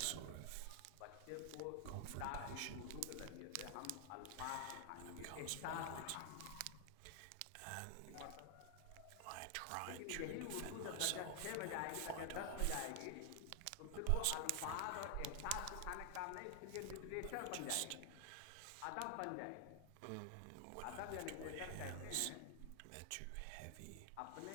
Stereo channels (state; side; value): different; both; correlation 0.00